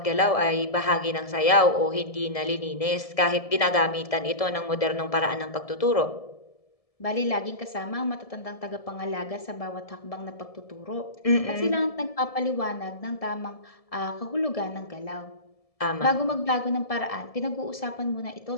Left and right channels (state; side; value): late; right; 1.7 ms